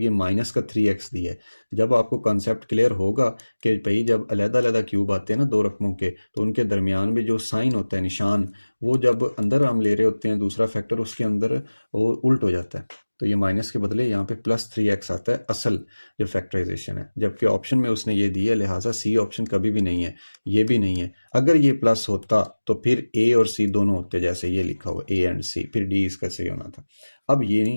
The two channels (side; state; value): both; inverted; correlation -1.00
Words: ये माइनस का 3x दिया है। जब आपको कॉन्सेप्ट क्लियर होगा कि भाई जब अलग-अलग क्यूब आते हैं ना दो रकमों के, तो उनके दरमियान में जो साइन होता है निशान, वो जब अंदर हम ले रहे होते हैं दूसरा फैक्टर, उसके अंदर वो उल्ट हो जाता है। तो ये माइनस के बदले यहाँ पे प्लस 3x आता है असल जो फैक्टराइजेशन है, जबकि ऑप्शन में उसने ये दिया, लिहाजा सी ऑप्शन कभी भी नहीं है, ये भी नहीं है। अगर ये प्लस होता तो फिर ए और सी दोनों होते, जैसे ये लिखा हुआ ए एंड सी, फिर डी इसका सही होना था। अब ये